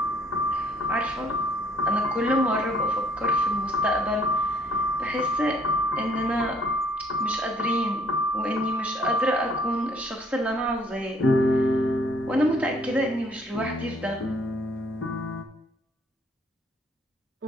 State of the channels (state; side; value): normal; both; correlation 0.62